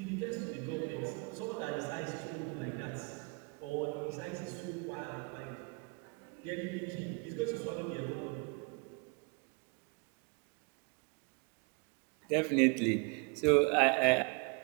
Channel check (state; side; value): quieter; left; 32.6 dB